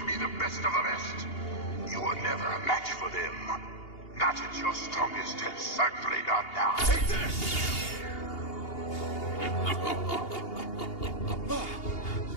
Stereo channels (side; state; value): right; late; 2.8 ms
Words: be the best of the best. You were never a match for them. Not at your strongest, and certainly not now. Take this!